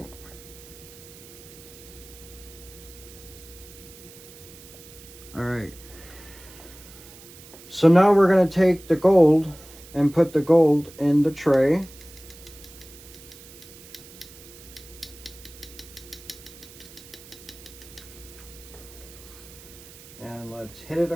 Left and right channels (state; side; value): noise; right; hiss, 19 dB below the sound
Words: All right. So now we're going to take the gold and put the gold in the tray. hit it